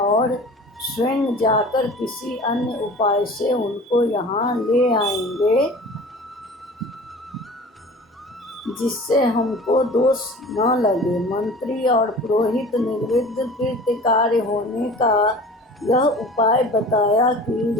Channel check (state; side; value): normal; both; correlation 0.41